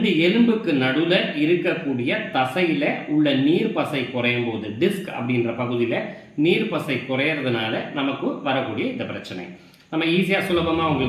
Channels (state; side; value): identical; both; correlation 1.00